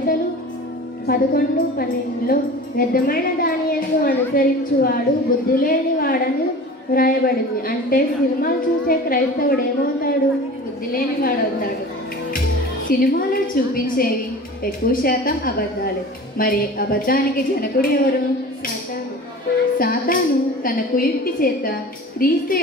11:12లో వ్యర్థమైన దాని యందు అనుసరించువాడు బుద్ధి లేని వాడని వ్రాయబడింది. అంటే సినిమాలు చూసే క్రైస్తవుడు ఏమవుతాడు? బుద్ధి లేని వాడవుతాడు. సినిమాలో చూపించేవి ఎక్కువ శాతం అబద్ధాలు. మరి అబద్ధానికి జనకుడు ఎవరు? సాతాను తన కుయుక్తి చేత క్రీస్తు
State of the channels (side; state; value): both; normal; correlation 0.38